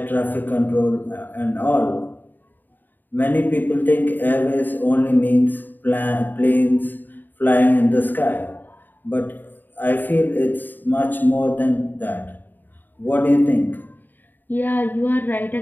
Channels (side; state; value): right; late; 0.090 ms